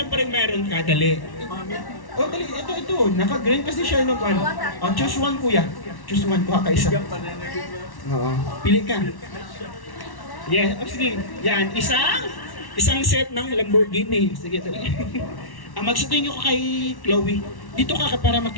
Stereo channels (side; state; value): right; late; 1.1 ms